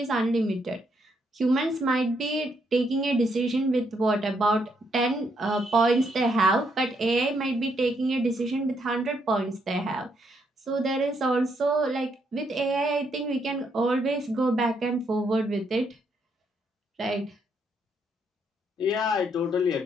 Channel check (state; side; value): normal; both; correlation 0.75